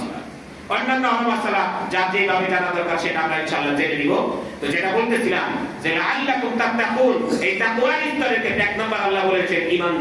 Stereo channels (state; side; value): identical; both; correlation 1.00